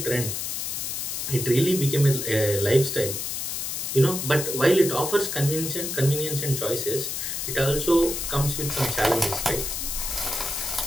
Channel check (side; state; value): left; noise; hiss, 3 dB below the sound